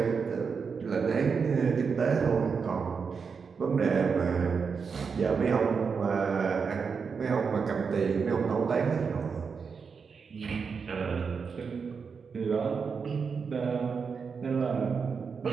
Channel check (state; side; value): quieter; left; 5.7 dB